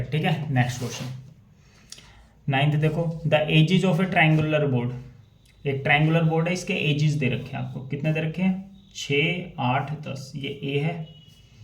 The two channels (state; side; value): identical; both; correlation 1.00